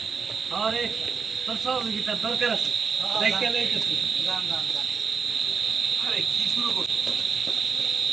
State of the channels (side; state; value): left; quieter; 5.6 dB